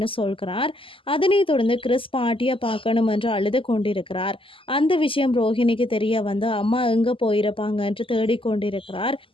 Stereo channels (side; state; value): right; late; 0.25 ms